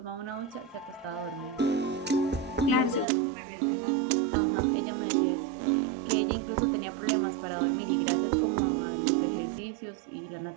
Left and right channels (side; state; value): left; drops out; at 3.1 s